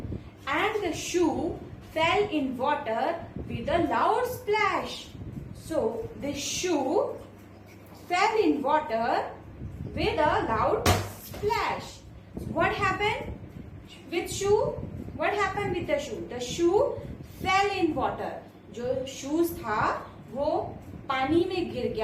and the shoe fail in water with a loud splash. So this shoe fail in water with a loud splash. What happened with shoe? What happened with the shoe? The shoe fail in water. जो shoes था वो पानी में गिर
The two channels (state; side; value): identical; both; correlation 1.00